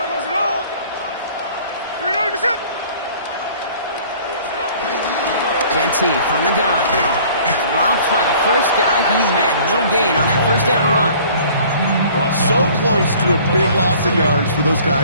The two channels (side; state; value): both; inverted; correlation -0.51